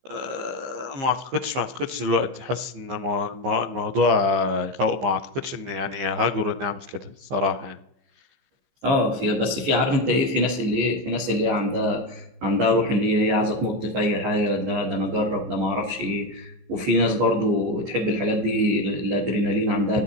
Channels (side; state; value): left; late; 15 ms